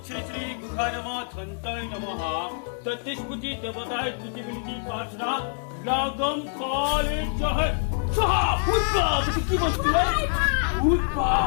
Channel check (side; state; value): right; silent; digital silence